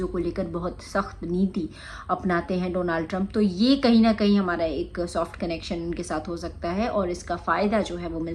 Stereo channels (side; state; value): both; identical; correlation 1.00